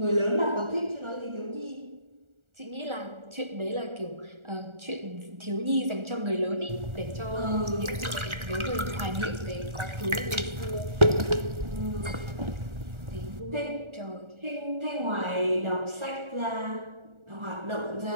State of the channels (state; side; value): late; left; 1.4 ms